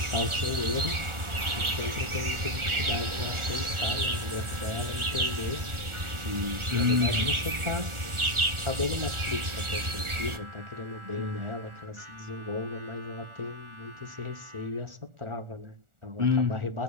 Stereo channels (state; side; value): late; left; 1.4 ms